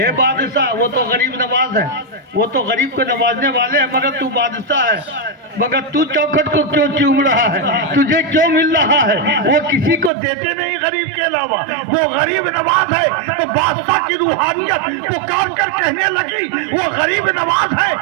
بادشاہ, وہ تو غریب نواز ہے, وہ تو غریب کو نوازنے والے ہیں, مگر تو بادشاہ ہے, مگر تو چوکھٹ کو کیوں چوم رہا ہے؟ تجھے کیوں مل رہا ہے؟ وہ کسی کو دیتے نہیں غریب کے علاوہ. وہ غریب نواز ہے تو بادشاہ کی روحانیت پکار کر کہنے لگی وہ غریب نواز ہے,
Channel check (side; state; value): left; drops out; at 10.1 s